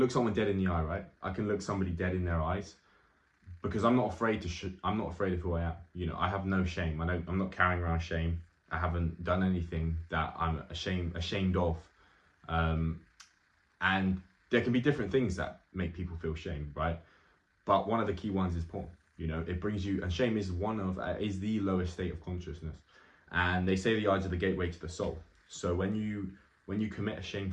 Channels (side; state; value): both; identical; correlation 1.00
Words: someone dead in the eye, right? I can look somebody dead in their eyes because I'm not afraid I'm not afraid of who I am. I have no shame. I'm not carrying around shame. I haven't done anything that I'm ashamed of. And there can be different things that make people feel shame, right? But one of the key ones is porn. It brings you, and shame is is the lowest state of consciousness. And they say the eyes are the gateway to the soul. So when you commit a